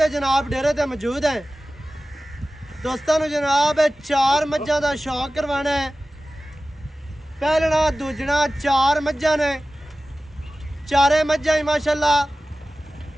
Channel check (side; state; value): both; normal; correlation 0.96